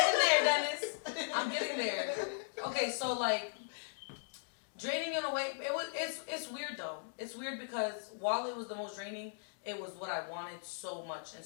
there, Dennis. I'm getting there. Okay, so like draining in a way, it's weird though. It's weird because while it was the most draining, it was what I wanted so much and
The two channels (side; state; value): right; silent; digital silence